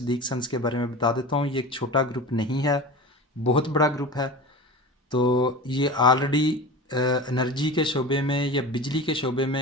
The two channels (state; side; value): normal; both; correlation 0.32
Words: सन्स के बारे में बता देता हूँ। ये एक छोटा ग्रुप नहीं है, बहुत बड़ा ग्रुप है। तो ये ऑलरेडी एनर्जी के शोबे में या बिजली के शोबे